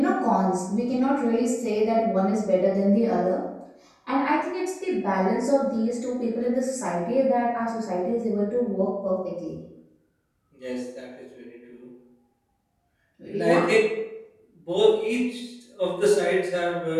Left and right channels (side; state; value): both; identical; correlation 1.00